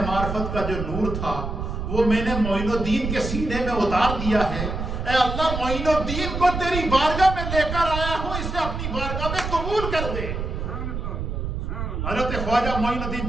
معرفت کا جو نور تھا وہ میں نے معین الدین کے سینے میں اتار دیا ہے، اے اللہ معین الدین کو تیری بارگاہ میں لے کر آیا ہوں، اسے اپنی بارگاہ میں قبول کر دے۔ حضرت خواجہ معین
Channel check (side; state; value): right; noise; rumble, 4 dB below the sound